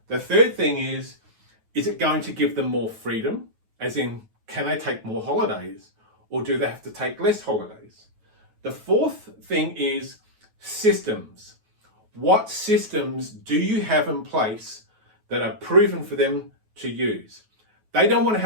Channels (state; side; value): late; left; 9.3 ms